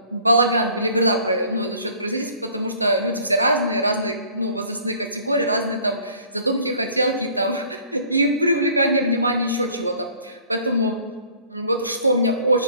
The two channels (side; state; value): both; inverted; correlation -0.54